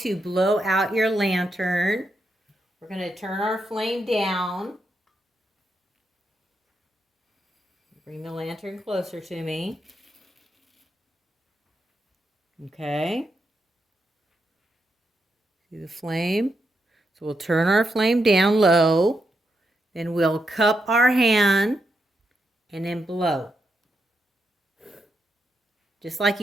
blow out your lantern. We're going to turn our flame down. Bring the lantern closer to me. Okay. See the flame? So we'll turn our flame down low. Then we'll cup our hand and then blow. Just like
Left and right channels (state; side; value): normal; both; correlation 0.83